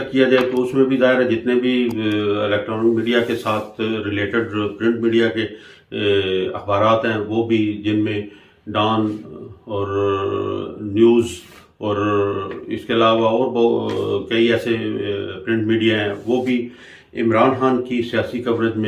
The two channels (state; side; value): identical; both; correlation 1.00